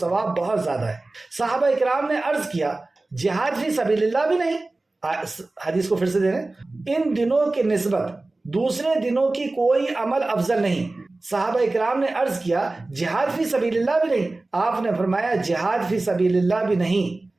بہت زیادہ ہے۔ صحابہ اکرام نے عرض کیا جہاد فی سبیل اللہ بھی نہیں؟ حدیث کو پھر سے دے رہے ہیں، ان دنوں کی نسبت دوسرے دنوں کی کوئی عمل افضل نہیں۔ صحابہ اکرام نے عرض کیا جہاد فی سبیل اللہ بھی نہیں؟ آپ نے فرمایا جہاد فی سبیل اللہ بھی نہیں،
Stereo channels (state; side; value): quieter; left; 3.1 dB